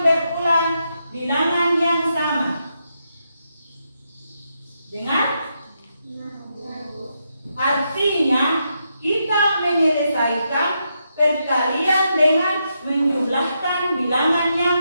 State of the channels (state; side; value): inverted; both; correlation -0.82